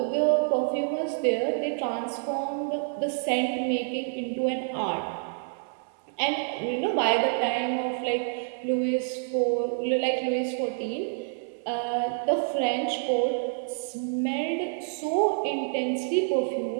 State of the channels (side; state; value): left; silent; 59 dB below the other